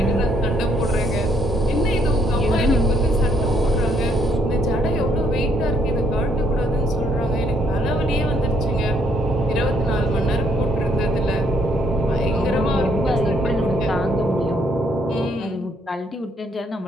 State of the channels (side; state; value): both; normal; correlation 0.69